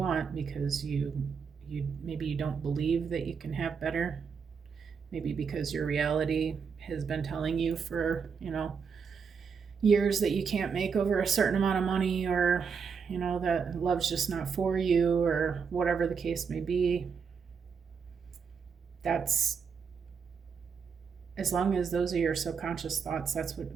because you maybe you don't believe that you can have better. Maybe because your reality has been telling you for, years that you can't make over a certain amount of money, or, that love's just not for you, or whatever the case may be. That's, as long as those are your subconscious thoughts, that's the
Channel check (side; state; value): left; quieter; 6.1 dB